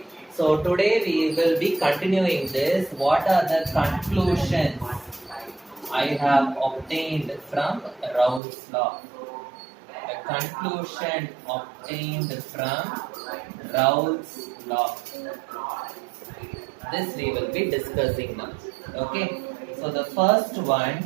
So today we will be continuing this. What are the conclusions I have obtained from Raoult's law? The conclusion obtained from Raoult's law. This we will be discussing now. Okay. So the first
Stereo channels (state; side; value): drops out; left; at 8.4 s